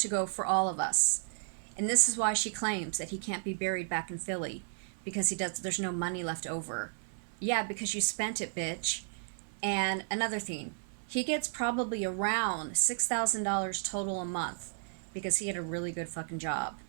go for all of us. And this is why she claims that he can't be buried back in Philly, because there's no money left over. Yeah, because you spent it, bitch. And another thing, he gets probably around $6,000 total a month because he had a really good fucking job,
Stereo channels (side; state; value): left; silent; 56 dB below the other